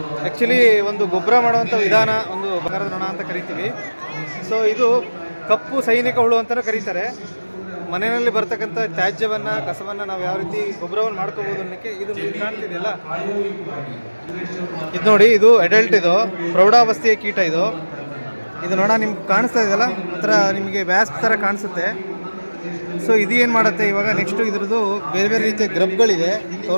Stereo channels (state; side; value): inverted; both; correlation -1.00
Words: ಆ್ಯಕ್ಚುಲಿ ಒಂದು ಗೊಬ್ಬರ ಮಾಡುವಂಥ ವಿಧಾನ, ಒಂದು ಬಂಗಾರದ ನೊಣ ಅಂತ ಕರಿತೀವಿ. ಸೊ ಇದು ಕಪ್ಪು ಸೈನಿಕ ಹುಳು ಅಂತಲೂ ಕರೀತಾರೆ. ಮನೆಯಲ್ಲಿ ಬರ್ತಕ್ಕಂಥ ತ್ಯಾಜ್ಯವನ್ನು, ಕಸವನ್ನು ನಾವು ಯಾವ ರೀತಿ ಗೊಬ್ಬರವನ್ನು ಮಾಡ್ಕೋಬೋದು ಅನ್ನೋಕ್ಕೆ ಇದು ಕಾಣ್ತಿದೆಯಲ್ಲ, ಇದು ನೋಡಿ, ಇದು ಅಡಲ್ಟ್, ಇದು ಪ್ರೌಢಾವಸ್ಥೆಯ ಕೀಟ. ಇದು ನೊಣ ನಿಮ್ಗೆ ಕಾಣಿಸ್ತಾ ಇದೆಯಲ್ಲ, ಒಂಥರ ನಿಮಗೆ ವ್ಯಾಸ್ಪ್ ಥರ ಕಾಣಿಸುತ್ತೆ. ಸೊ ಇದು ಏನು ಮಾಡುತ್ತೆ ಇವಾಗ, ನೆಕ್ಸ್ಟು ಇದ್ರದ್ದು ಬೇರೆ ಬೇರೆ ರೀತಿಯ ಗ್ರಬ್ಗಳಿದೆ,